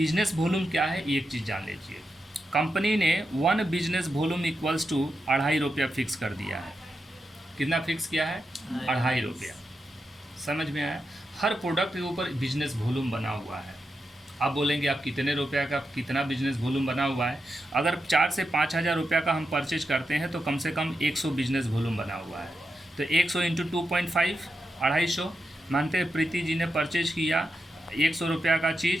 वॉल्यूम क्या है, एक चीज़ जान लीजिए। कंपनी ने 1 बिजनेस वॉल्यूम इक्वल्स टू 2.5 रुपया फिक्स कर दिया है। कितना फिक्स किया है? 2.5 रुपया। समझ में आया? हर प्रोडक्ट के ऊपर बिजनेस वॉल्यूम बना हुआ है। आप बोलेंगे आप कितने रुपया का कितना बिजनेस वॉल्यूम बना हुआ है? अगर 4 से 5 हज़ार रुपया का हम परचेज करते हैं तो कम से कम 100 बिजनेस वॉल्यूम बना हुआ है। तो 100 इंटू 2.5 250। मानते हैं प्रीति जी ने परचेज किया 100 रुपया का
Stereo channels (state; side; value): normal; both; correlation 0.87